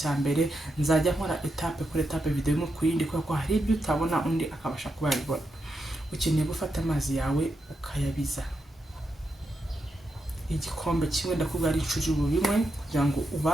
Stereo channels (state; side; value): normal; both; correlation 0.85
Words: mbere, nzajya nkora etape kuri etape video imwe ku yindi, kuko hari ibyo utabona undi akabasha kuba yabibona. Ukeneye gufata amazi yawe ukayabiza igikombe kimwe, ndakubwira ari icujuru bimwe, kugira ngo